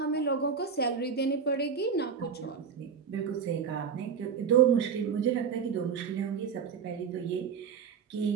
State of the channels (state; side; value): quieter; left; 6.6 dB